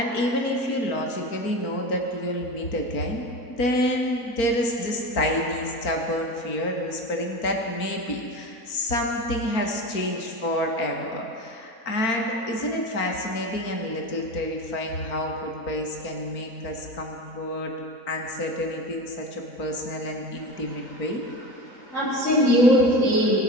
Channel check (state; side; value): late; right; 4.4 ms